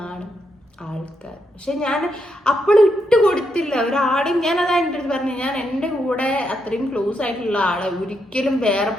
ആൾക്കാർ. പക്ഷെ ഞാൻ അപ്പോഴും ഇട്ട് കൊടുത്തില്ല ഒരാളെയും. ഞാനതാ എൻ്റെ അടുത്ത് പറഞ്ഞു, ഞാൻ എൻ്റെ കൂടെ അത്രയും ക്ലോസ് ആയിട്ടുള്ള ആളെ ഒരിക്കലും വേറെ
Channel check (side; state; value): both; normal; correlation 0.80